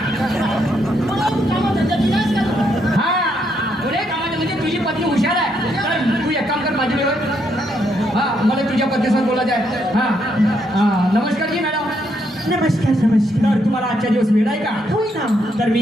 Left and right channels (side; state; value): both; normal; correlation 0.76